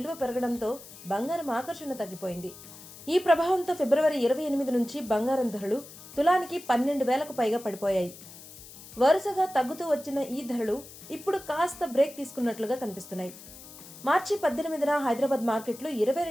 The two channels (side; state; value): left; noise; hiss, 17 dB below the sound